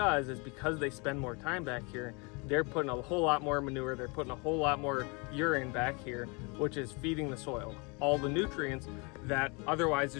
is, because they spend more time back here, they're putting a whole lot more manure, they're putting a whole lot more urine back here, which is feeding the soil all the nutrients that otherwise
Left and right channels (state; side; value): quieter; right; 30.5 dB